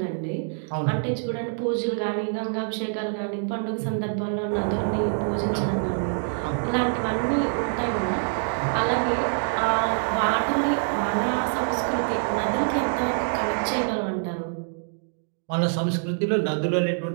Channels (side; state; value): left; silent; 61 dB below the other